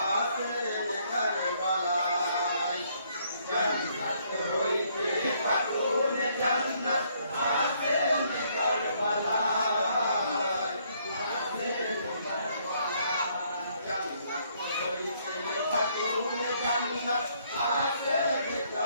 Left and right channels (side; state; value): both; inverted; correlation -0.68